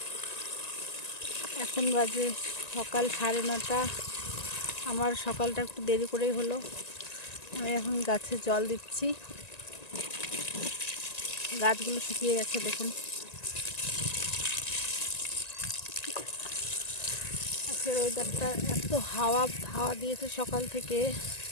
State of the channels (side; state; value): right; late; 1.9 ms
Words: এখন বাজে সকাল 9:30। আমার সকালটা একটু দেরি করেই হলো। আমি এখন গাছে জল দিচ্ছি। গাছগুলো শুকিয়ে গেছে, দেখুন। আজকের ওয়েদারটা এত হাওয়া দিয়েছে সকাল থেকে,